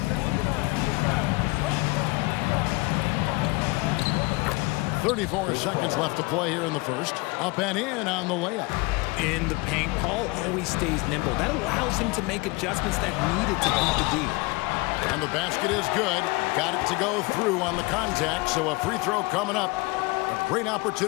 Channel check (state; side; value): quieter; right; 24.7 dB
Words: 34 seconds left to play here in the first. Up and in on the layup. In the paint, Paul always stays nimble. That allows him to make adjustments that needed to beat the D. And the basket is good. Got it to go through on the contact, so a free throw coming up. A great